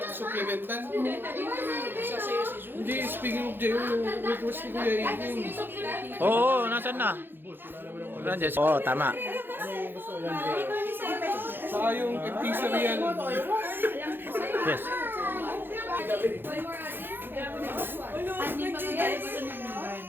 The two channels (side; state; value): left; late; 0.10 ms